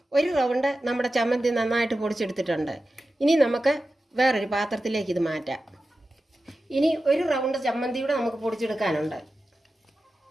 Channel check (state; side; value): normal; both; correlation 0.93